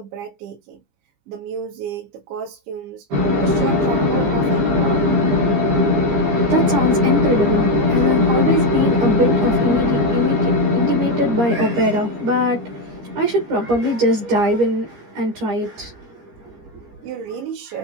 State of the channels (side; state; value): left; late; 15 ms